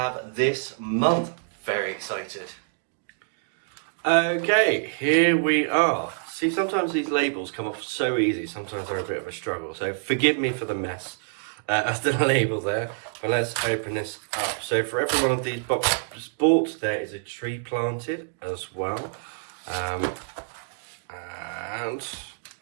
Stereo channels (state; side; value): silent; left; digital silence